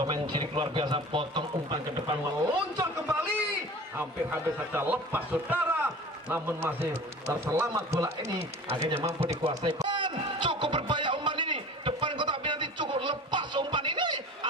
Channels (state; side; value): normal; both; correlation 0.39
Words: cilik luar biasa, potong umpan ke depan, meluncur kembali, hampir saja lepas saudara, namun masih terselamat bola ini, akhirnya mampu dikuasai. Cukup berbahaya umpan ini, depan kotak penalti cukup lepas umpan ini,